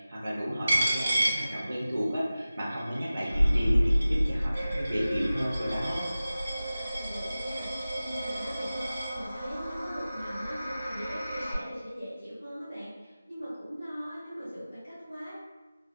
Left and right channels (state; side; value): inverted; both; correlation -0.96